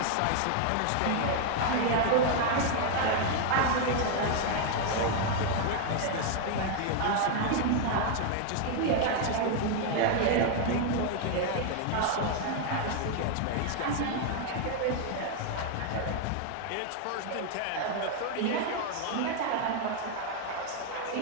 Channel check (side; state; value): both; different; correlation 0.00